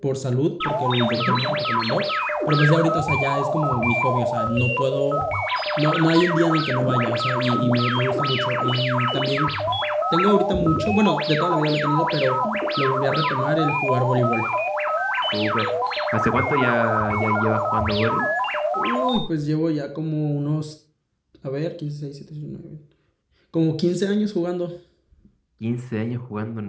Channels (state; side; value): identical; both; correlation 1.00